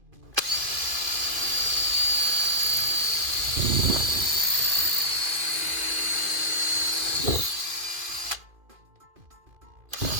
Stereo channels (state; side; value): late; left; 2.5 ms